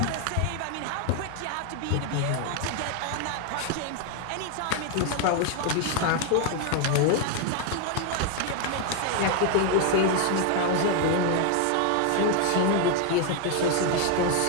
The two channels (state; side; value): different; both; correlation 0.01